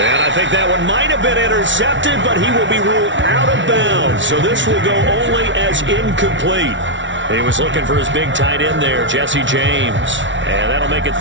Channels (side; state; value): left; late; 0.55 ms